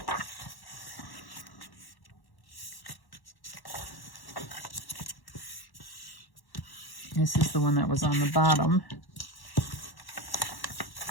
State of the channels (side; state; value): right; late; 1.1 ms